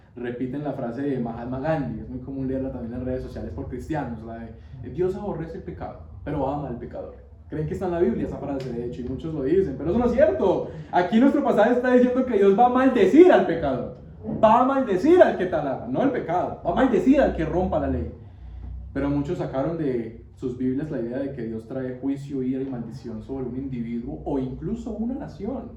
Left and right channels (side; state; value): both; identical; correlation 1.00